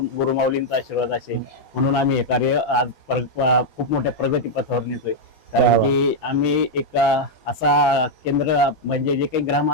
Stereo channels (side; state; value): both; normal; correlation -0.02